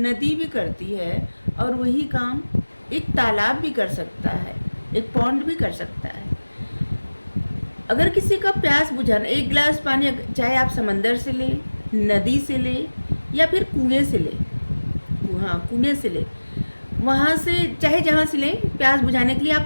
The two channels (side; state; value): both; inverted; correlation -1.00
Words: भी करती है, और वही काम एक तालाब भी कर सकता है, एक पॉन्ड भी कर सकता है। अगर किसी का प्यास बुझाना, एक गिलास पानी चाहे आप समंदर से ले, नदी से ले, या फिर कुएं से ले, हाँ कुएं से ले, वहाँ से चाहे जहाँ से लें, प्यास बुझाने के लिए